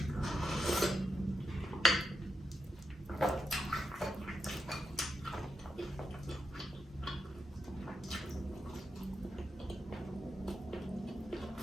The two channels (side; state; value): both; normal; correlation 0.83